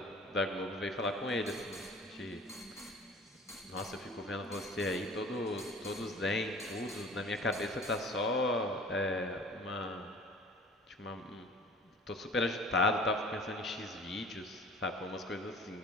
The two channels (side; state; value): both; normal; correlation 0.46